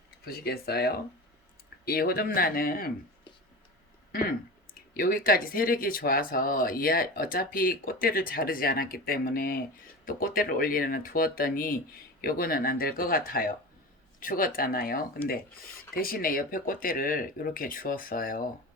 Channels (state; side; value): normal; both; correlation 0.30